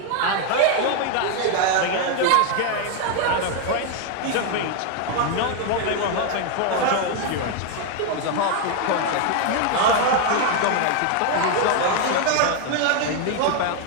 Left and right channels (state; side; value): different; both; correlation 0.01